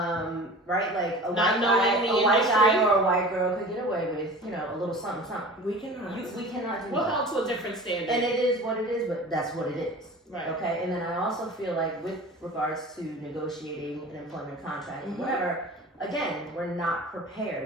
Like a Not white knowing the guy industry. or a white girl could get away with, a little something, something. We cannot. We cannot do We're that. held to a different standard. And it is what it is, but that's what it is. Right. Okay, and then I also feel like with regards to negotiating an employment contract, whatever, again, we're not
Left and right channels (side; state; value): both; normal; correlation 0.39